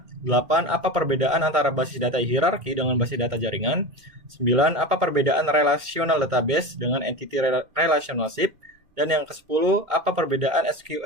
8, apa perbedaan antara basis data hierarki dengan basis data jaringan? 9, apa perbedaan relational database dengan entity relationship? Dan yang ke-10, apa perbedaan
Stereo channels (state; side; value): late; left; 2.3 ms